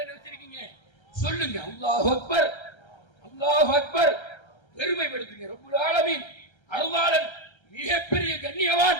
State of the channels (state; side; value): late; right; 1.3 ms